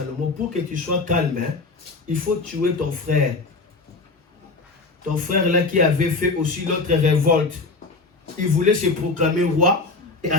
pour que tu sois calme, hein, il faut tuer ton frère. Ton frère là qui avait fait aussi l'autre révolte. Il voulait se proclamer roi. Et à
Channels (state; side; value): quieter; right; 3.7 dB